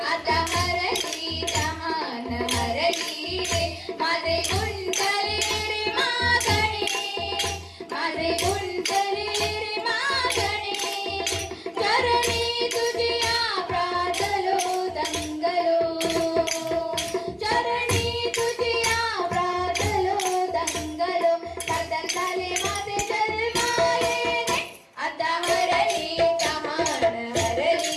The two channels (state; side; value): identical; both; correlation 1.00